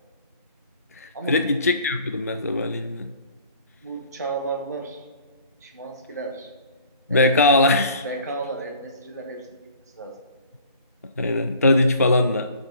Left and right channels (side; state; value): both; inverted; correlation -0.50